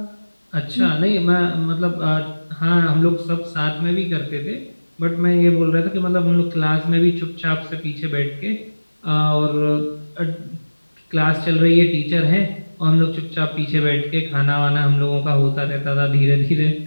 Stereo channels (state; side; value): inverted; both; correlation -1.00